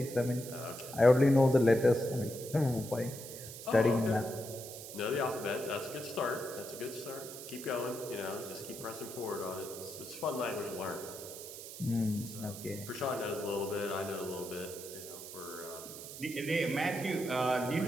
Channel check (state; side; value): noise; right; hiss, 12 dB below the sound